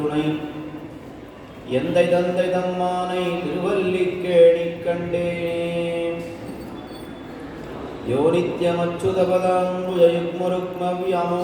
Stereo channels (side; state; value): both; identical; correlation 1.00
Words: எந்தை தந்தை தம்மானை திருவல்லிக்கேணிக் கண்டேனே யோ